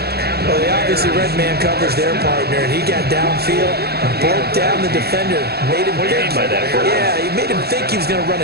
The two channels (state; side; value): late; left; 0.46 ms